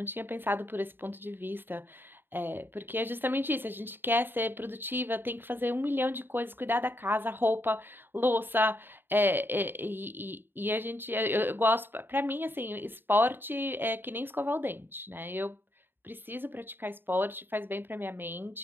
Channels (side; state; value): left; late; 0.098 ms